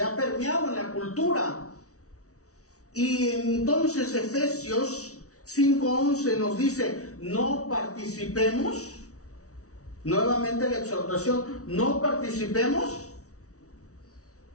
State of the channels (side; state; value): right; late; 0.65 ms